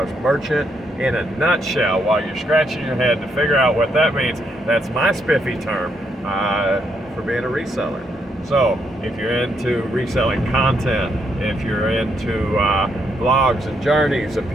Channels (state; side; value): normal; both; correlation 0.76